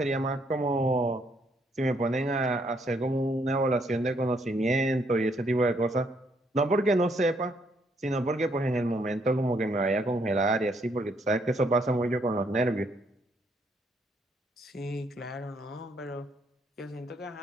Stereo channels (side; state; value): both; normal; correlation 0.71